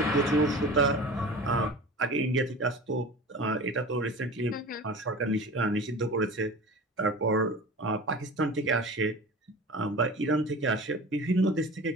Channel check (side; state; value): both; normal; correlation 0.36